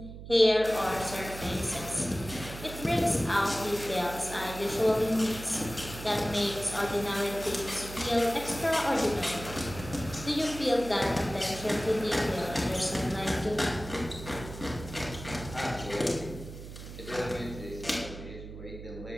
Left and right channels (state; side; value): noise; right; hum, 12 dB below the sound